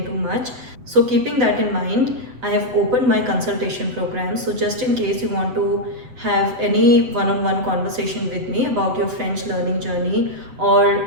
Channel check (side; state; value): left; late; 8.0 ms